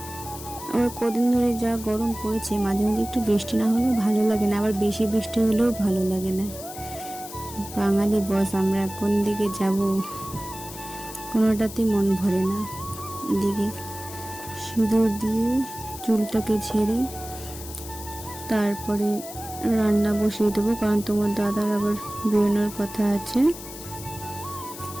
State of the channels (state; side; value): noise; left; hiss, 13 dB below the sound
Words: আবার কদিন ধরে যা গরম পড়েছে, মাঝে মাঝে একটু বৃষ্টি না হলেও ভালো লাগে না, আবার বেশি বৃষ্টি হলেও ভালো লাগে না। বাঙালি বস, আমরা কোন দিকে যাব কোনোটাতেই মন ভরে না। এদিকে সিঁদুর দিয়ে চুলটাকে ঝেড়ে তারপরে রান্না বসিয়ে দেবো, কারণ তোমার দাদার আবার বেরোনোর কথা আছে।